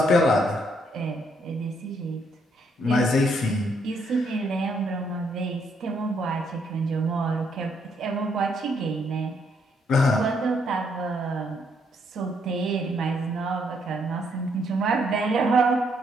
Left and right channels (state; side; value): normal; both; correlation 0.72